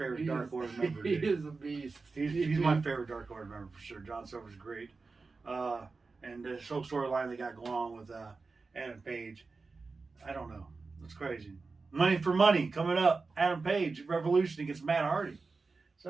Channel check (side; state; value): left; quieter; 4.1 dB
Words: Dark Order member. He dude. is a beast. He's my favorite Dark Order member for sure. John Silver's great. And this whole storyline they got going on with Adam Page, I don't know. It's crazy. Money for money coming up. Adam Page, Revolution against Matt Hardy. So